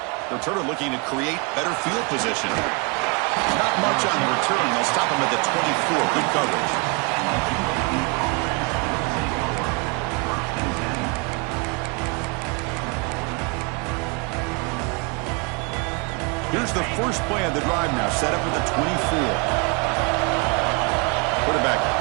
Returner looking to create better field position. Not much on the return. They'll stop him at the 24. Good coverage. Here's the first play of the drive now, set up with the 24. Quarterback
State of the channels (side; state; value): left; quieter; 31.1 dB